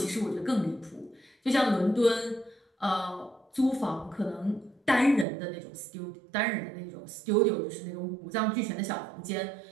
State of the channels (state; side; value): drops out; left; at 5.2 s